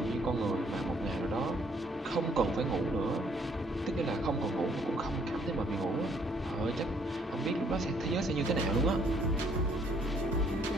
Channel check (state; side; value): normal; both; correlation 0.65